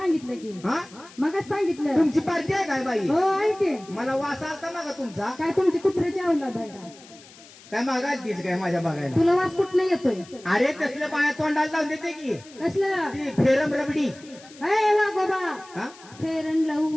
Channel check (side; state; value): left; noise; hiss, 22 dB below the sound